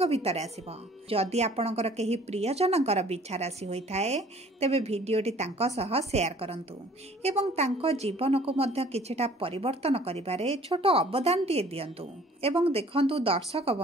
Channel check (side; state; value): both; normal; correlation 0.54